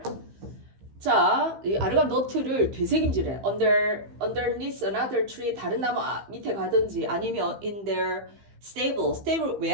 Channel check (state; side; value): late; left; 15 ms